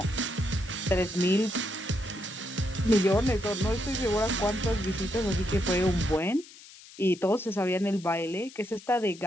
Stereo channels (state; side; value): noise; left; hiss, 20 dB below the sound